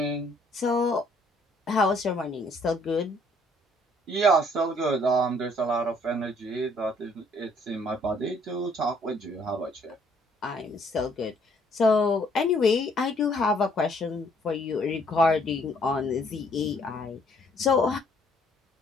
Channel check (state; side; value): normal; both; correlation 0.64